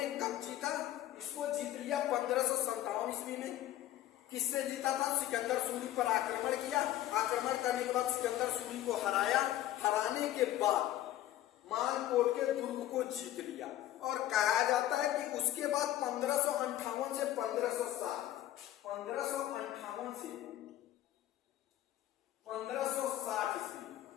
कब जीता, इसको जीत लिया 1557 ईस्वी में। किससे जीता था, सिकंदर सूरी पर आक्रमण किया। आक्रमण करने के बाद सिकंदर सूरी को हराया। हराने के बाद मानकोट के दुर्ग को जीत लिया। और कहा जाता है कि उसके बाद 1558 से 1560 ईस्वी,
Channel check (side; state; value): right; quieter; 13.6 dB